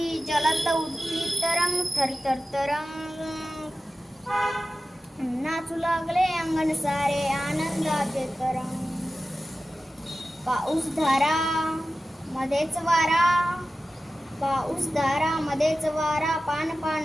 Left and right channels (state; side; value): normal; both; correlation 0.94